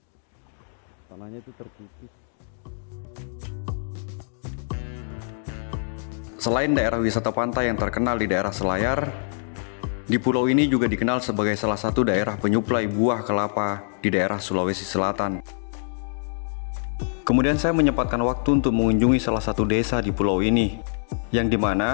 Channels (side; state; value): right; silent; digital silence